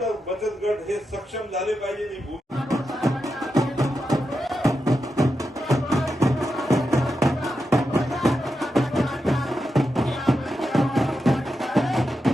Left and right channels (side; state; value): both; normal; correlation 0.87